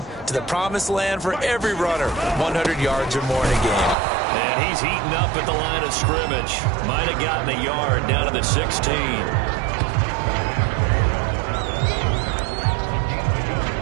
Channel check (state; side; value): drops out; left; at 4.0 s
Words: to the promised land for every runner. 100 yards or more in a game. And he's heating up at the line of scrimmage. Might have gotten a yard down to the 16.